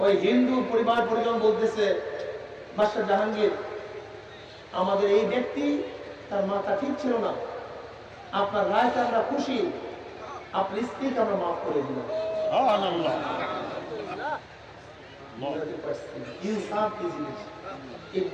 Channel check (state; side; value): identical; both; correlation 1.00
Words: ওই হিন্দু পরিবার পরিজন বলতেছে, বাদশাহ জাহাঙ্গীর, আমাদের এই ব্যক্তি তার মাথা ঠিক ছিল না, আপনার রায়তে আমরা খুশি, আপনার স্ত্রীকে আমরা মাফ করে দিলাম। ইনসাফ কি জিনিস? এই